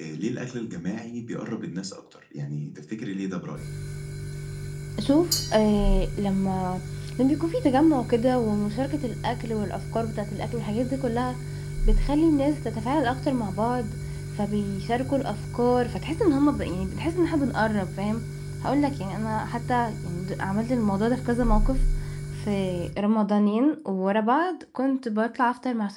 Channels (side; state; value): both; identical; correlation 1.00